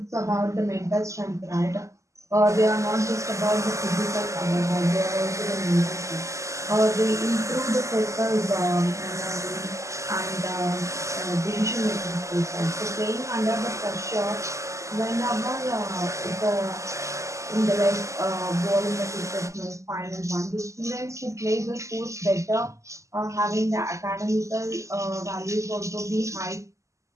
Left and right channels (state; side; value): late; left; 0.15 ms